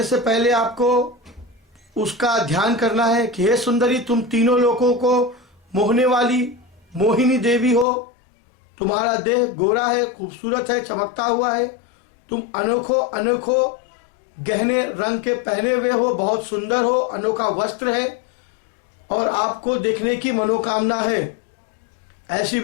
से पहले आपको उसका ध्यान करना है कि हे सुंदरी, तुम तीनों लोगों को मोहने वाली मोहिनी देवी हो। तुम्हारा देह गोरा है, खूबसूरत है, चमकता हुआ है। तुम अनोखो गहने रंग के पहने हुए हो, बहुत सुंदर हो, अनोखा वस्त्र है और आपको देखने की मनोकामना है। ऐसी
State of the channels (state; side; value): drops out; right; at 7.9 s